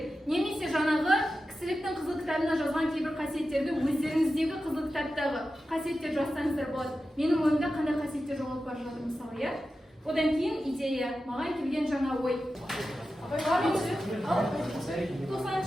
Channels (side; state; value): both; normal; correlation 0.92